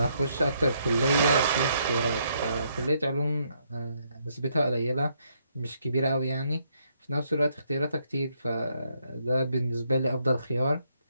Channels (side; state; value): both; inverted; correlation -0.73